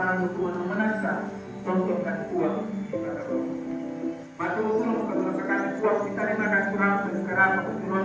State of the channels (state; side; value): identical; both; correlation 1.00